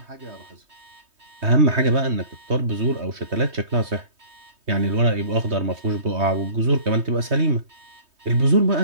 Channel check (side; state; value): left; late; 3.2 ms